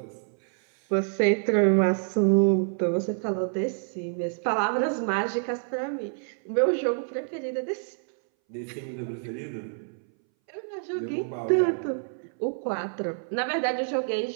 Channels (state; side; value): silent; left; 60 dB below the other